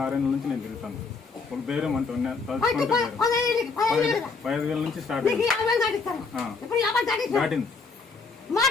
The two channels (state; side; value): quieter; right; 4.5 dB